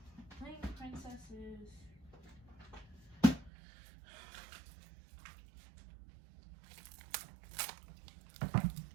some plain princesses.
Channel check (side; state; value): left; drops out; at 3.5 s